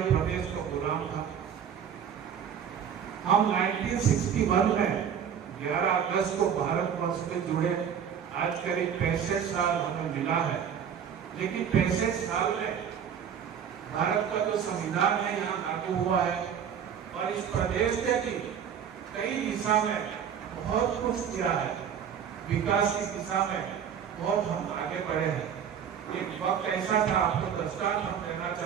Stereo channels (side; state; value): left; quieter; 8.1 dB